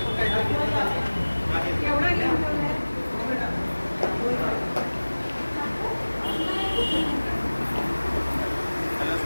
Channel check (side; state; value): both; inverted; correlation -1.00